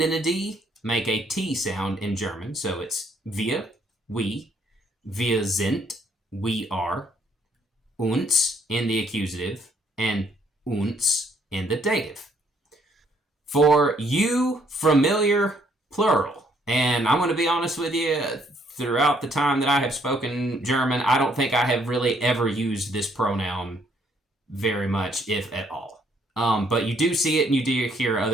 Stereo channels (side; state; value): both; normal; correlation 0.67